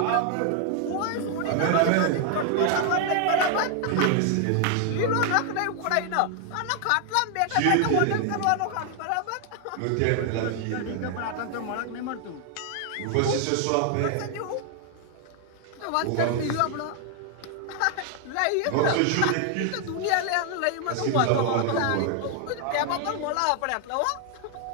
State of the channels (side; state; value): both; different; correlation 0.00